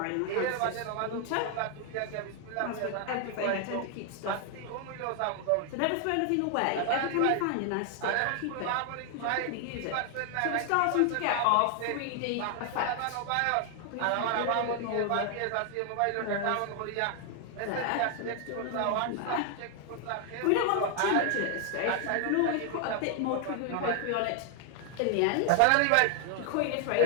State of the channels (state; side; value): different; both; correlation 0.00